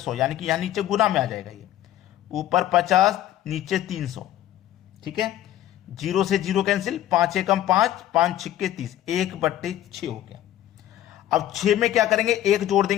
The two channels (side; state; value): right; quieter; 12.7 dB